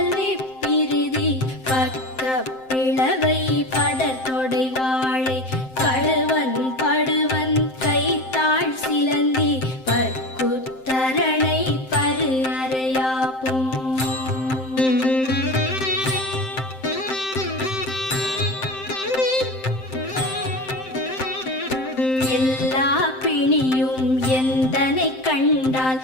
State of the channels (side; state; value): right; late; 7.7 ms